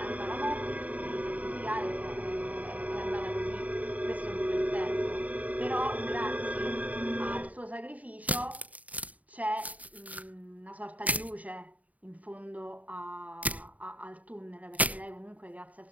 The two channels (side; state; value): left; late; 0.072 ms